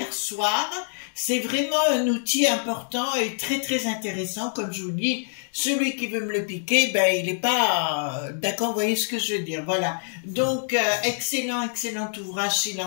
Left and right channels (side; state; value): right; silent; digital silence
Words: soir. C'est vraiment un outil important et très très intéressant, comme je vous dis. Celui qui veut me le piquer, ben il n'est pas d'accord, vous voyez ce que je veux dire, voilà. Donc, excellent ouvrage s'il